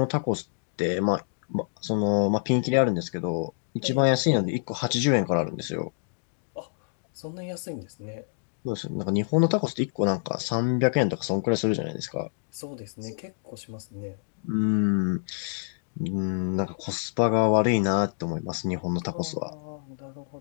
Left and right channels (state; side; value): silent; right; digital silence